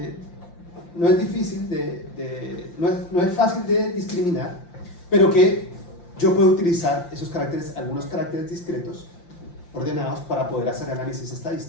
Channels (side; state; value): right; late; 5.8 ms